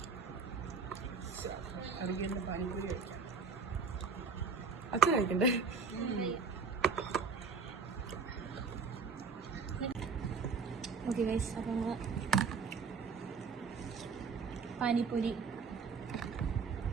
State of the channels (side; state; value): left; quieter; 5.1 dB